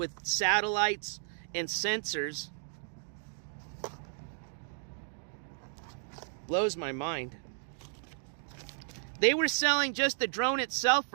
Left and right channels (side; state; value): left; silent; digital silence